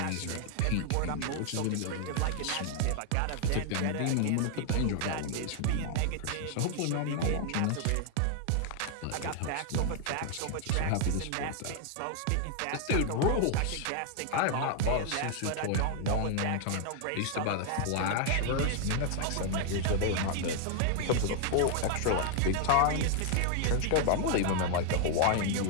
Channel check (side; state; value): both; different; correlation 0.00